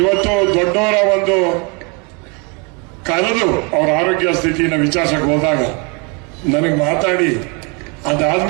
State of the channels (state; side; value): quieter; left; 32.3 dB